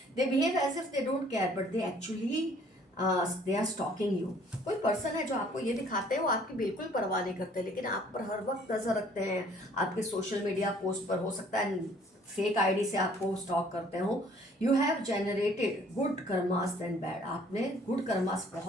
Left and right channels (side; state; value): both; normal; correlation 0.58